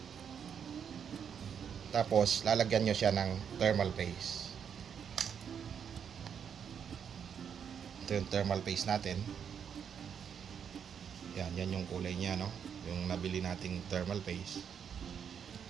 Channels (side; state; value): left; quieter; 7.7 dB